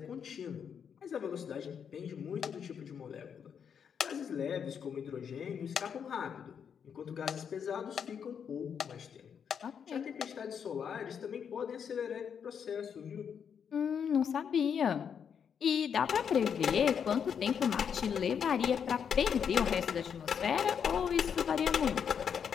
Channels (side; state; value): right; quieter; 7.4 dB